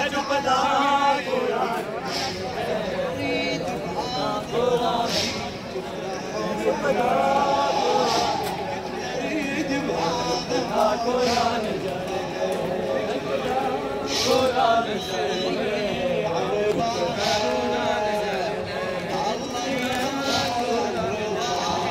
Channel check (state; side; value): identical; both; correlation 1.00